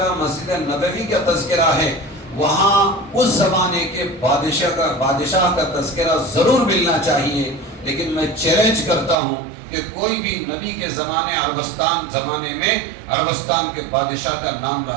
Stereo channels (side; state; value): left; drops out; at 9.2 s